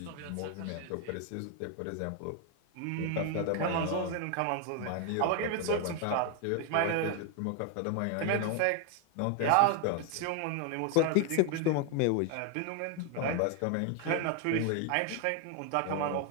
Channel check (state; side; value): different; both; correlation 0.01